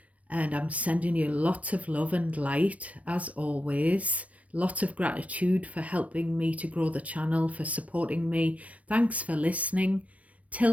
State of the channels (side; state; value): left; late; 0.066 ms